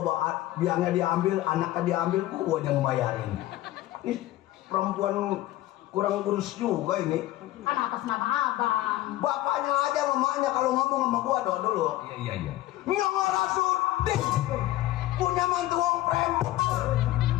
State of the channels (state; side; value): quieter; right; 15.6 dB